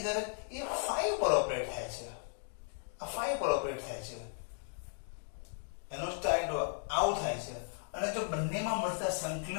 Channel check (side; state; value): right; silent; 54 dB below the other